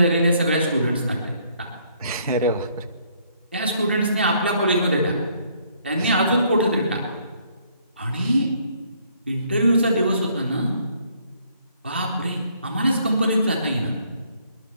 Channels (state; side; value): inverted; both; correlation -0.66